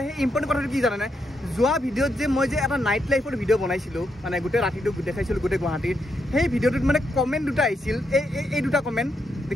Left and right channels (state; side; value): normal; both; correlation 0.80